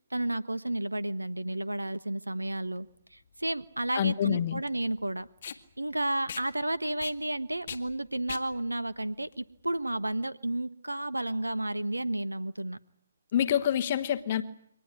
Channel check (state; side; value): inverted; both; correlation -0.85